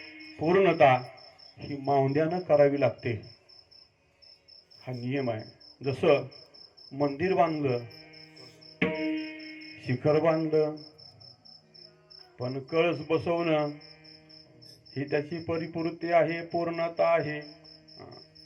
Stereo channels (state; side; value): identical; both; correlation 1.00